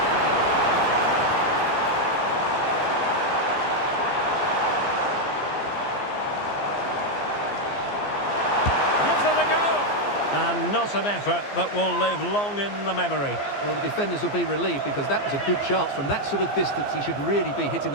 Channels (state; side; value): late; right; 15 ms